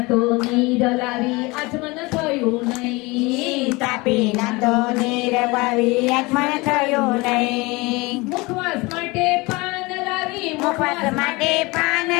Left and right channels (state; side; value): quieter; right; 24.0 dB